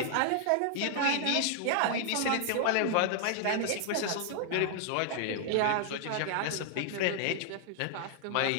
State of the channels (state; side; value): different; both; correlation 0.00